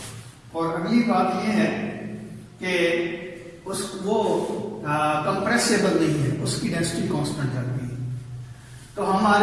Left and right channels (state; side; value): identical; both; correlation 1.00